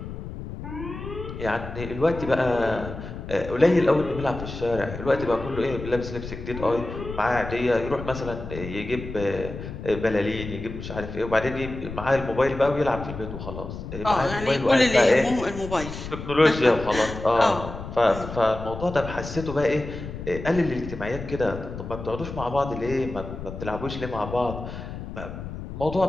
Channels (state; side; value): noise; left; rumble, 9 dB below the sound